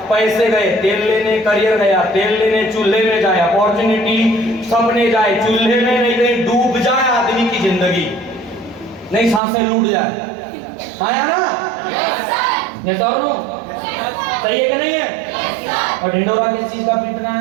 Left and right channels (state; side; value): drops out; left; at 9.4 s